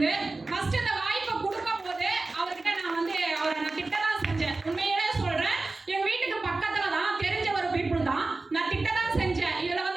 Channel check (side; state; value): left; quieter; 3.4 dB